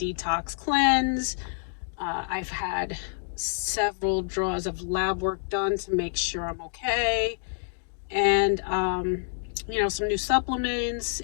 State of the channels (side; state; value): right; silent; digital silence